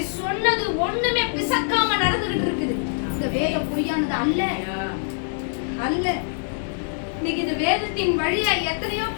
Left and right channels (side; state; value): right; silent; 63 dB below the other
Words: சொன்னது ஒண்ணுமே பிசக்காம நடந்துகிட்டு இருக்குது. இந்த வேதம் பொய்யானது அல்ல, அல்ல. இன்னைக்கு இந்த வேதத்தின் வழியா எத்தனையோ